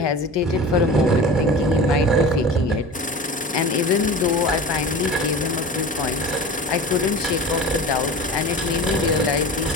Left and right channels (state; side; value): normal; both; correlation 0.35